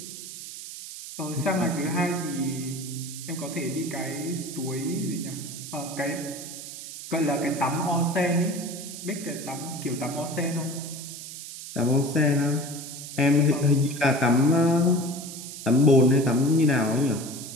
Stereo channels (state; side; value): noise; right; hiss, 11 dB below the sound